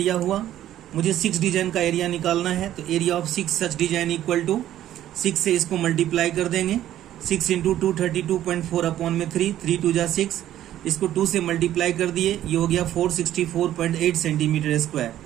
हुआ, मुझे 6 डिजाइन का एरिया निकालना है, तो area of 6 such design equal to 6 से इसको मल्टीप्लाई कर देंगे, 6 इंटू 232.4 अपॉन में 3, 3 2 जा 6, इसको 2 से मल्टीप्लाई कर दिए, ये हो गया 464.8 सेंटीमीटर स्क्वायर।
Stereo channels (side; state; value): left; quieter; 12.4 dB